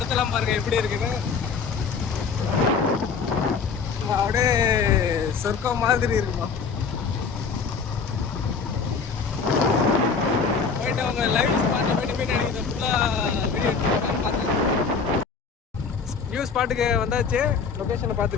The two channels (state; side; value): quieter; right; 5.4 dB